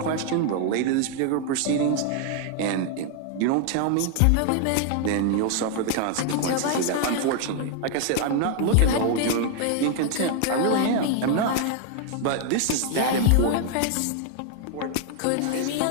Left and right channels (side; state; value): both; different; correlation 0.00